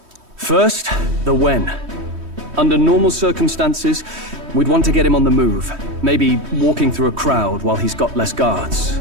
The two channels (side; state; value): left; late; 3.1 ms